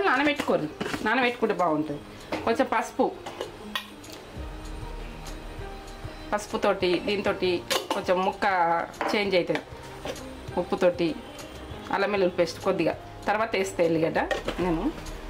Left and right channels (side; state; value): both; identical; correlation 1.00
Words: నానబెట్టుకోరు. నానబెట్టుకుంటే బాగుంటుంది. కొంచెం పసుపుతోటి దీంతో కొంచెం ముక్క చేంజ్ అవుతుంది. ఉప్పుతోటి అల్లం వెల్లుల్లి పేస్ట్ కొద్దిగా తర్వాత వేస్తే ఎల్లిగడ్డ నేను